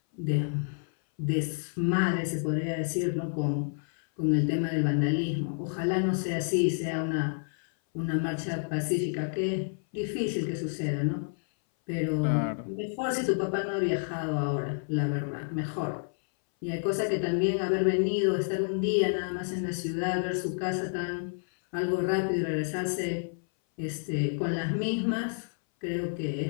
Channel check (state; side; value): silent; right; 58 dB below the other